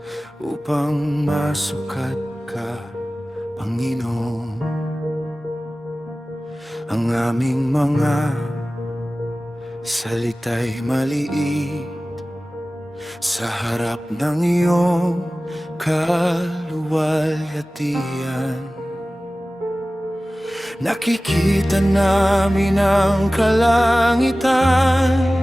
upang masukat ka, Panginoon. Ang aming mga salita'y maliit sa harap ng iyong kaluwalhatian. Nakikita namin ang kalangitan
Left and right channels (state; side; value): normal; both; correlation 0.97